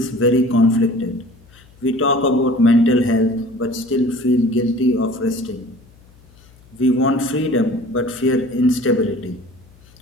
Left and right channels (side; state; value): left; noise; hum, 27 dB below the sound